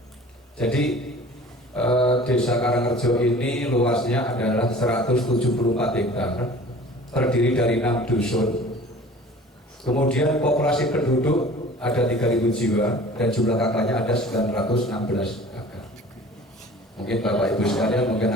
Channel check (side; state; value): both; normal; correlation 0.45